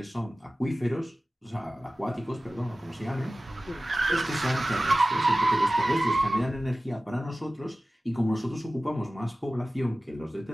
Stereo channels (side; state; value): both; normal; correlation 0.97